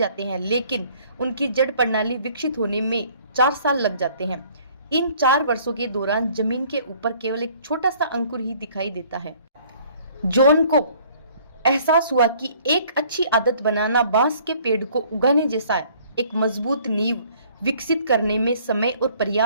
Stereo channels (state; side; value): inverted; both; correlation -0.57